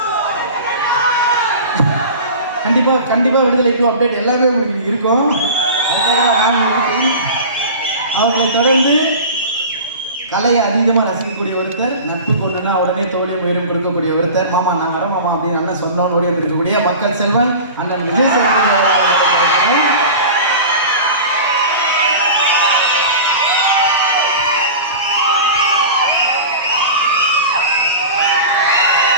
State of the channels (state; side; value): inverted; both; correlation -0.34